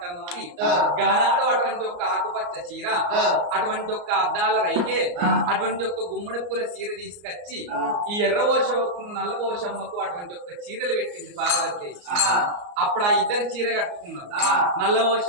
అని గానాడు అటువంటి ఒక ఆకుపచ్చ చీర అటువంటి ఒక అద్దాల రైకే అటువంటి ఒక గుమ్మడి పూల చీర తీసుకొచ్చి ఈ ఎర్ర ఓషమ్మకు నల్ల ఓషమ్మకు అటువంటి ఒక చీరలు పెట్టింది పార్వతి అప్పుడు ఆ ఇద్దరు చీర కట్టుకున్నారు నల్ల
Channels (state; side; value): late; left; 34 ms